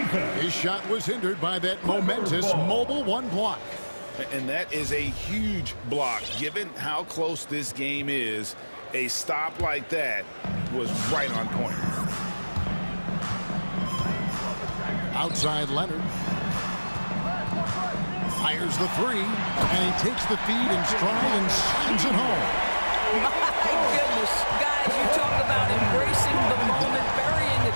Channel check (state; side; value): inverted; both; correlation -1.00